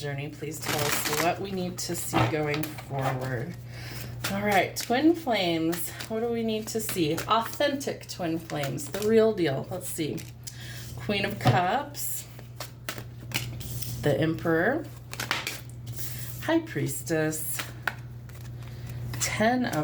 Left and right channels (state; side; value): identical; both; correlation 1.00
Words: please tell us what we need to see going forward. All right, twin flames. What do we need to see? Authentic twin flames, the real deal. Let's see. Queen of Cups, the Emperor, High Priestess, 10